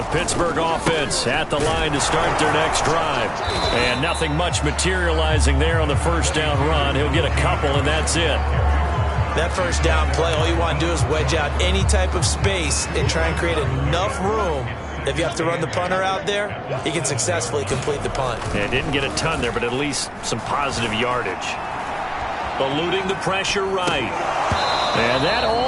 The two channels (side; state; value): both; identical; correlation 1.00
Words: Pittsburgh offense at the line to start their next drive. And nothing much materializing there on the first down run. He'll get a couple, and that's it. That first down play, all you want to do is wedge out any type of space and try and create enough room. If you have to run the punter out there, he can successfully complete the punt. Yeah, didn't get a ton there, but at least some positive yardage. Eluding the pressure right. And that